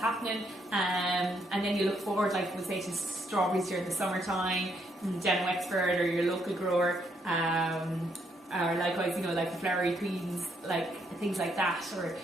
And then you look forward, like we say, to strawberries during the summertime, down in Wexford or your local grower. Or likewise, you know, like the flowery greens, like things like that, or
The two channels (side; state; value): both; normal; correlation 0.74